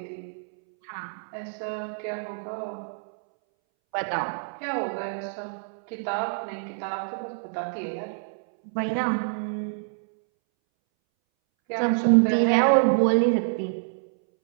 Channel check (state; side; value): silent; left; 60 dB below the other